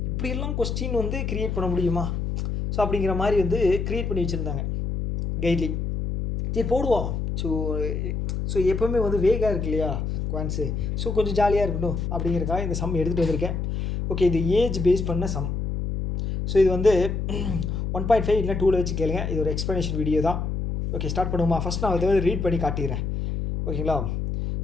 இப்படியெல்லாம் கொஸ்டின் வந்து க்ரியேட் பண்ண முடியுமா ஸோ அப்படிங்கிற மாதிரி வந்து க்ரியேட் பண்ணி வச்சுருந்தாங்க கைட்லி. சரி போடுவோம். ஸோ எப்போவுமே வந்து வேகாக இருக்கு இல்லையா குவான்ஸு, ஸோ கொஞ்சம் ஜாலியாக இருக்கட்டும் அப்படிங்கிறக்காக இந்த சம் எடுத்துகிட்டு வந்திருக்கேன். ஓகே, இது ஏஜ் பேஸ் பண்ண சம். ஸோ இது வந்து 1.5 இல்லை 2ல் வச்சு கேளுங்க. இது ஒரு எக்ஸ்ப்ளனேஷன் வீடியோ தான். ஓகே, ஸ்டார்ட் பண்ணுவோமா? ஃபஸ்ட் நான் இதை வந்து ரீட் பண்ணி காட்டிடுறேன். ஓகேங்களா,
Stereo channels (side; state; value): left; noise; hum, 2 dB below the sound